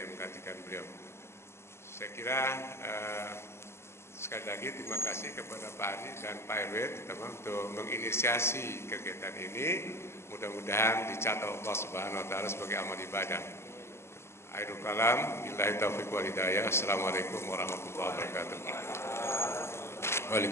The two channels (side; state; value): right; late; 0.12 ms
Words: menggantikan beliau. Saya kira sekali lagi terima kasih kepada Pak Ari dan Pak RW terutama untuk menginisiasi kegiatan ini. Mudah-mudahan dicatat Allah Subhanahu wa taala sebagai amal ibadah. Akhirul kalam, billahi taufiq wal hidayah. Assalamualaikum warahmatullahi wabarakatuh.